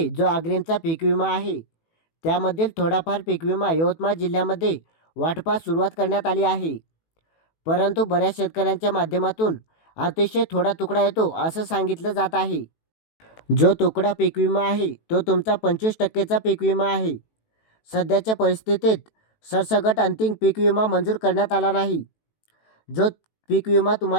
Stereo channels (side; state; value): right; late; 18 ms